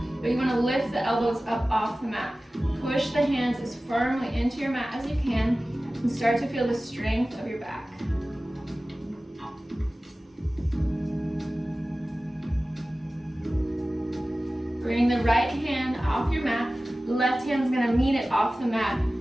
but you want to lift the elbows up off the mat. Push the hands as firmly into your mat as you can and start to feel the strength of your back. Bring the right hand off your mat. The left hand's going to meet it off the mat.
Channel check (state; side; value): normal; both; correlation 0.96